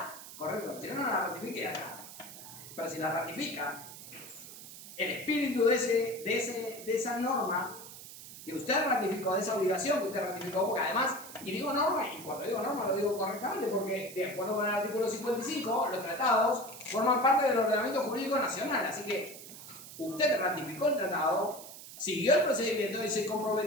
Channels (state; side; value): noise; right; hiss, 14 dB below the sound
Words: correcto. Si no la ratifique, ya está. Pero si la ratifica, el espíritu de esa norma que usted ratificó, de esa obligación que usted ratificó, porque además, y digo norma, y cuando digo norma lo digo correctamente, porque de acuerdo con el artículo 55, los tratados forman parte del ordenamiento jurídico nacional, así que usted ratificó el tratado, siguió el procedimiento y se